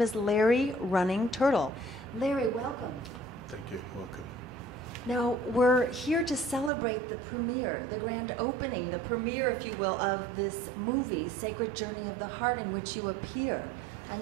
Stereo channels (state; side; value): drops out; left; at 6.7 s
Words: is Larry Running Turtle. Larry, welcome. Thank you. Welcome. Now, we're here to celebrate the premiere, the grand opening, the premiere, if you will, of this movie, Sacred Journey of the Heart, in which you appear. And